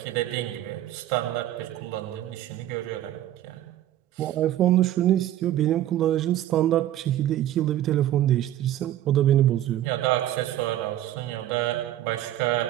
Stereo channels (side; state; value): left; quieter; 12.8 dB